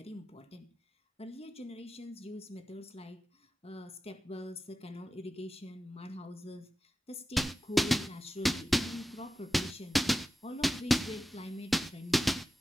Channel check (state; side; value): normal; both; correlation 0.94